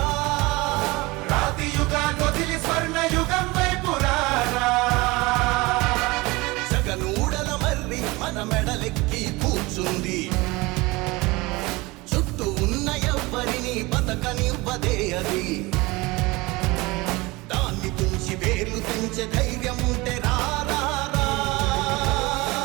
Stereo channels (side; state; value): left; quieter; 22.8 dB